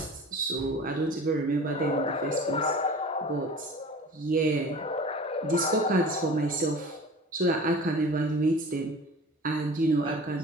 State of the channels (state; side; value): normal; both; correlation 0.40